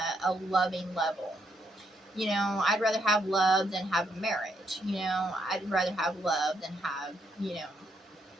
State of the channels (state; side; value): normal; both; correlation 0.75